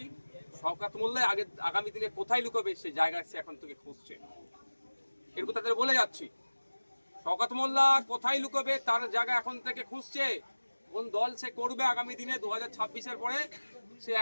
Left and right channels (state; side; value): inverted; both; correlation -1.00